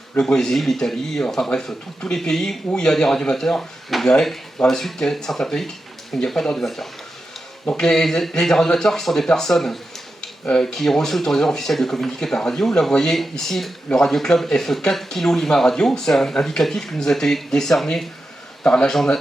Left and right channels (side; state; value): both; normal; correlation 0.90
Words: le Brésil, l'Italie, enfin bref, tous les pays où il y a des radioamateurs. Vous verrez dans la suite qu'il y a certains pays où il n'y a pas de radioamateurs. Donc les radioamateurs qui sont des personnes qui ont reçu l'autorisation officielle de communiquer par radio. Là, vous voyez ici le Radio Club F4 Kilo Lima Radio. C'est un indicatif qui nous a été décerné par l'Agence